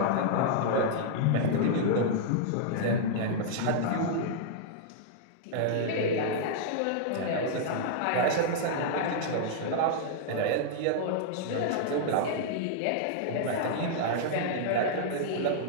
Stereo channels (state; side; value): different; both; correlation -0.02